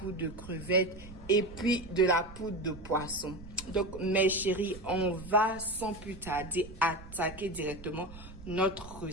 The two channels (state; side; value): noise; right; rumble, 16 dB below the sound